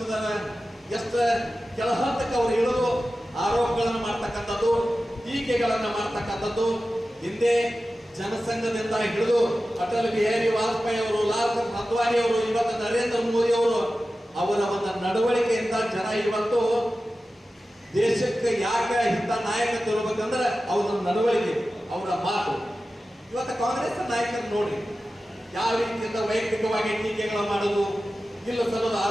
ಎಷ್ಟು ಕೆಲ ಹಂತಕ್ಕೆ ಅವರು ಇಳಿದು ಆರೋಪಗಳನ್ನು ಮಾಡ್ತಕ್ಕಂಥದ್ದು, ಟೀಕೆಗಳನ್ನು ಮಾಡ್ತಕ್ಕಂಥದ್ದು. ಹಿಂದೆ ಜನಸಂಘದಿಂದ ಹಿಡಿದು ಅಟಲ್ ಬಿಹಾರಿ ವಾಜಪೇಯಿ ಅವರು, ಲಾಲ್ ಕೃಷ್ಣ ಅದ್ವಾನಿ ಅವರು, ಇವತ್ತು ನರೇಂದ್ರ ಮೋದಿ ಅವರು, ಅವರ ಒಂದು ನಡವಳಿಕೆಯಿಂದ ಜನ ಇವತ್ತು ದೇಶಕ್ಕೆ ಯಾಕೆ ಇಂಥ ನಾಯಕತ್ವ ಇರಬೇಕಂದ್ರೆ ಅವರ ನಡವಳಿಕೆ, ಅವರ ಮಾತು. ಇವತ್ತು ಕಾಂಗ್ರೆಸ್ ನಾಯಕರು ನೋಡ್ರಿ ಯಾವ ರೀತಿಯಿಂದ ವೈಯಕ್ತಿಕವಾಗಿ ಟೀಕೆಗಳನ್ನು ಮಾಡೋದು, ಇಲ್ಲ ಸಲ್ಲದ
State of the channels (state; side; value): normal; both; correlation 0.94